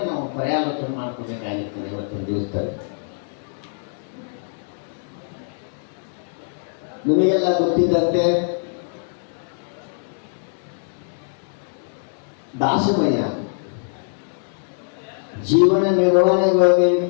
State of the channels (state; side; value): silent; right; digital silence